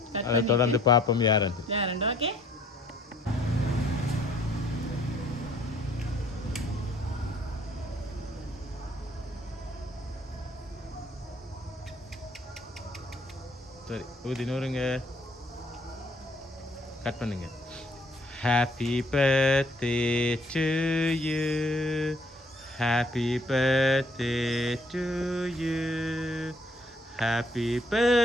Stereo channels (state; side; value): normal; both; correlation 0.63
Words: தொடர்ந்து பாப்போம் யாருண்டு. ஓகே, சரி, ஊதினூருங்க கட் பண்ணுங்க. Happy birthday to you, happy birthday to you, happy